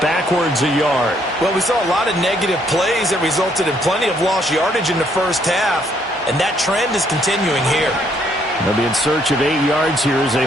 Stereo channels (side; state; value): both; normal; correlation 0.69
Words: backwards a yard. Well, we saw a lot of negative plays that resulted in plenty of lost yardage in the first half, and that trend is continuing here. They'll be in search of 8 yards here as they